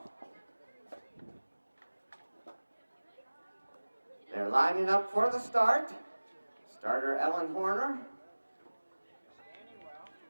They're lining up for the start. Starter Ellen Horner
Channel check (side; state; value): both; inverted; correlation -1.00